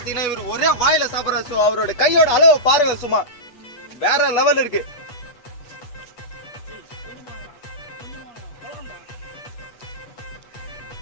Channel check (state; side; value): late; right; 8.3 ms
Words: இவர் ஒரே வாயில சாப்பிட்றாரு. ஸோ அவரோட கையோட அளவை பாருங்க, சும்மா வேற லெவல் இருக்கு.